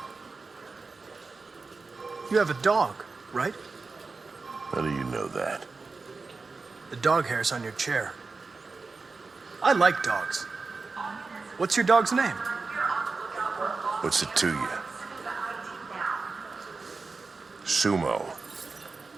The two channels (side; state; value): left; quieter; 4.1 dB